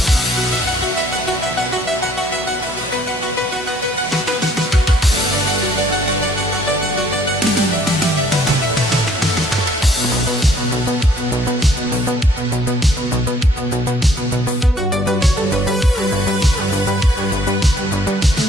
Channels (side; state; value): both; normal; correlation 0.60